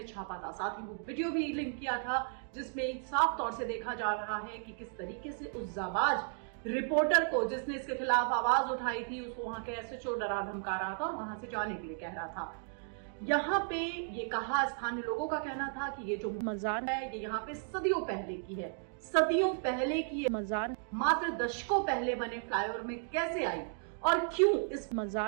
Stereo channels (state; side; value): silent; left; 55 dB below the other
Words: छापा था। साथ ही वो वीडियो भी लिंक किया था जिसमें साफ तौर से देखा जा रहा है कि किस तरीके से उस जाबाज रिपोर्टर को जिसने इसके खिलाफ आवाज उठाई थी उसको वहां के एसएचओ डरा धमका रहा था और वहां से जाने के लिए कह रहा था। यहाँ पे ये कहा, स्थानीय लोगों का कहना था कि ये जो मजार है ये यहाँ पे सदियों पहले की है। सदियों पहले की ये मजार मात्र दशकों पहले बने फ्लाईओवर में कैसे आई और क्यों इस